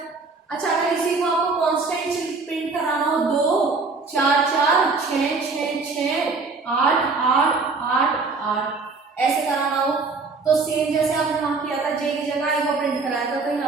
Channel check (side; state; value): left; quieter; 4.1 dB